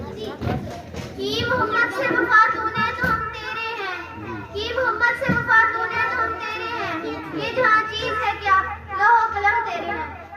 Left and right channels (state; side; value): identical; both; correlation 1.00